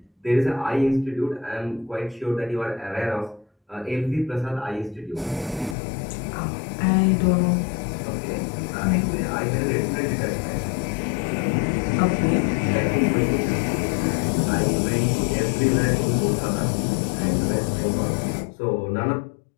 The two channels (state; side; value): drops out; right; at 5.8 s